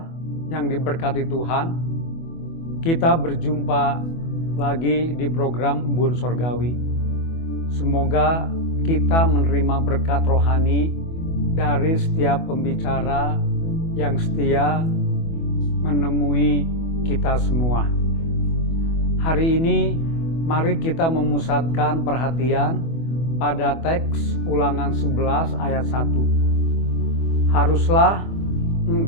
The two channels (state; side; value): late; right; 24 ms